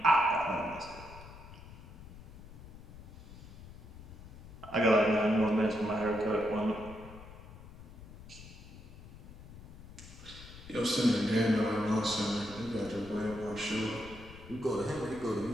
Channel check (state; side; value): noise; left; rumble, 16 dB below the sound